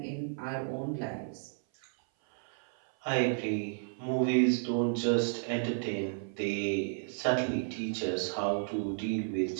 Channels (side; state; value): left; silent; 56 dB below the other